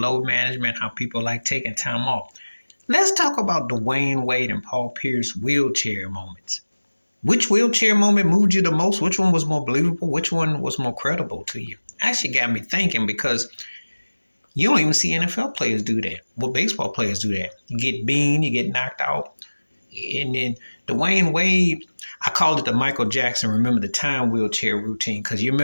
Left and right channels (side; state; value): both; inverted; correlation -1.00